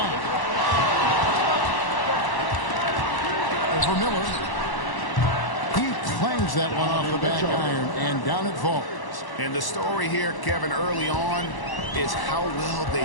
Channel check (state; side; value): late; right; 1.0 ms